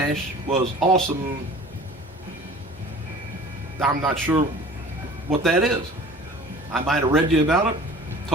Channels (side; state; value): both; normal; correlation 0.45